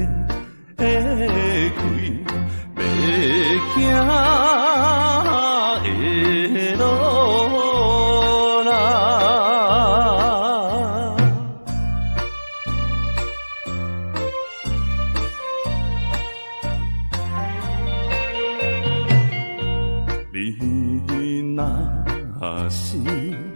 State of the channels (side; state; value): both; inverted; correlation -1.00